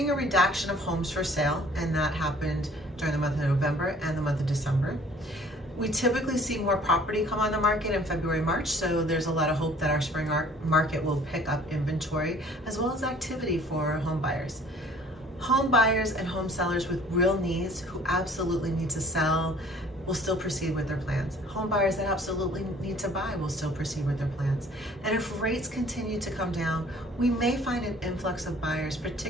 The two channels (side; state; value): both; normal; correlation 0.54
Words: a reduction of homes for sale, and that happened during the month of November and the month of December. We typically see more property come on the market in February, March, so there's a lot of hope that our spring market will pick up inventory as well as activity for home buyers. Home buyers and home sellers with real needs who absolutely need to sell will still proceed with their plans. Home buyers that absolutely need to buy will still proceed with their plans. And if rates continue to come down, we may find an influx of buyers,